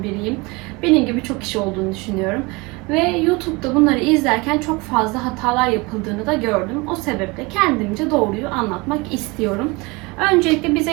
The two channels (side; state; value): left; quieter; 25.6 dB